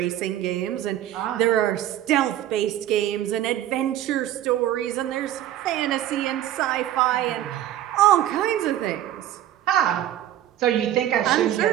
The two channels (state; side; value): quieter; left; 12.4 dB